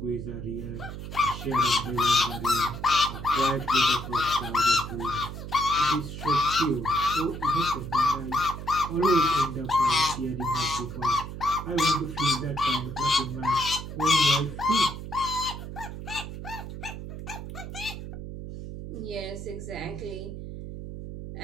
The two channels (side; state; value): right; noise; hum, 9 dB below the sound